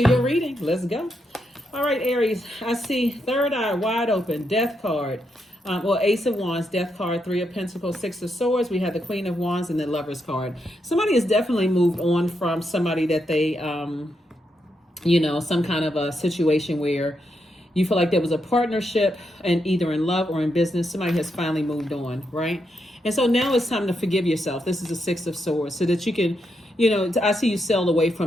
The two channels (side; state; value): both; normal; correlation 0.82